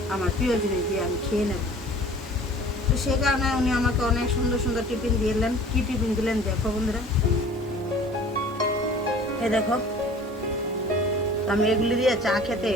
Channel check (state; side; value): normal; both; correlation 0.47